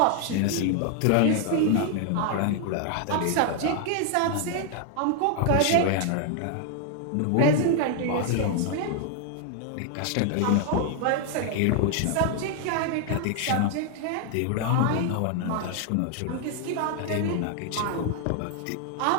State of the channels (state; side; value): different; both; correlation 0.00